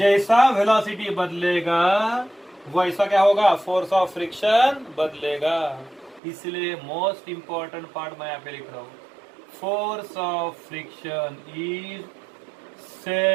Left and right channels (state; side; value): drops out; left; at 6.2 s